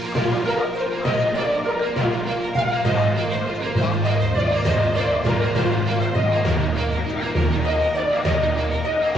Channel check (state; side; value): normal; both; correlation 0.77